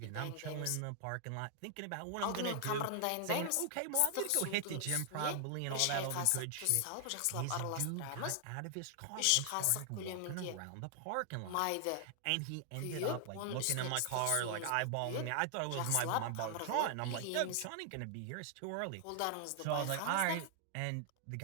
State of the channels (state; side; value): different; both; correlation 0.00